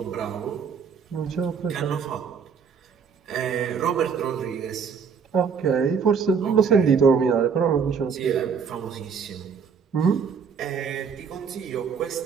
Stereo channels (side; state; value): left; quieter; 6.4 dB